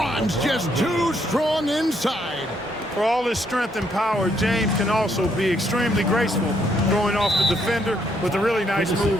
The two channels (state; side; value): normal; both; correlation 0.72